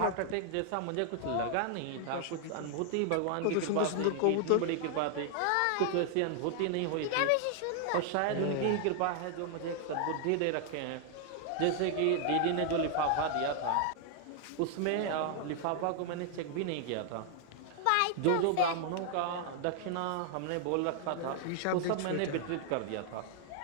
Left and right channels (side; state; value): both; different; correlation 0.00